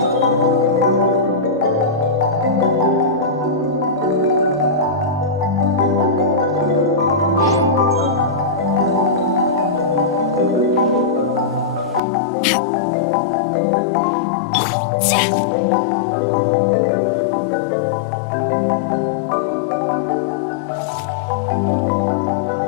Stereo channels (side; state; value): right; drops out; at 12.0 s